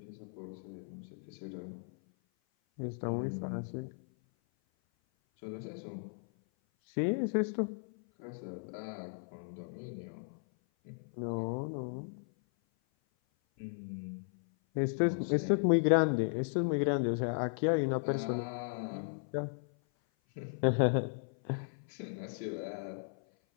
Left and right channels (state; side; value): silent; right; 54 dB below the other